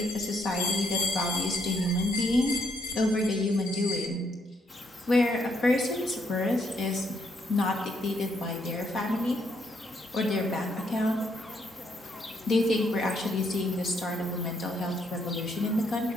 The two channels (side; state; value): both; normal; correlation 0.74